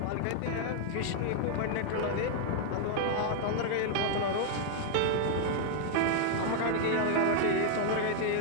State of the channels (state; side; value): different; both; correlation 0.00